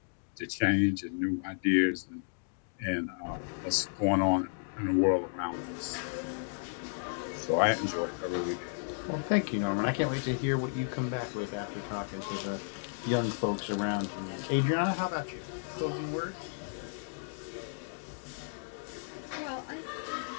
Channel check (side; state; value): right; silent; digital silence